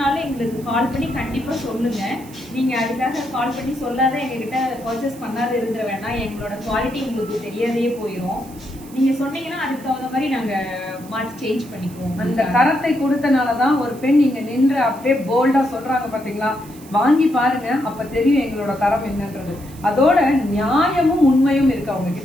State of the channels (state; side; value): noise; right; hiss, 21 dB below the sound